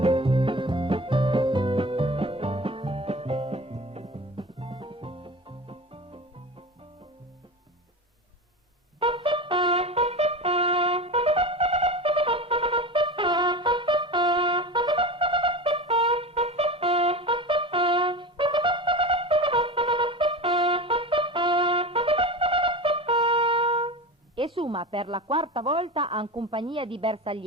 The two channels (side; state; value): both; normal; correlation 0.28